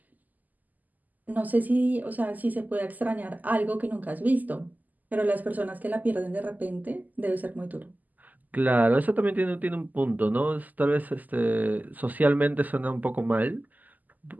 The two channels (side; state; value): left; late; 0.082 ms